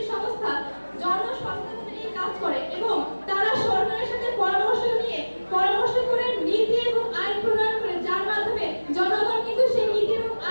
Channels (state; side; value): inverted; both; correlation -1.00